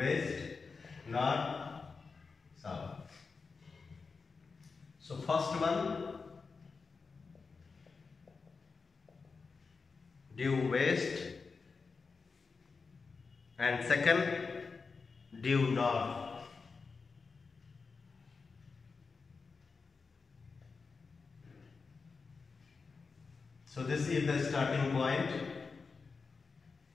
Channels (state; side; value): quieter; right; 4.7 dB